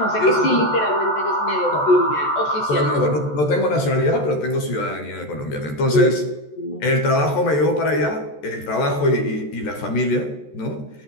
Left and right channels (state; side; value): late; right; 14 ms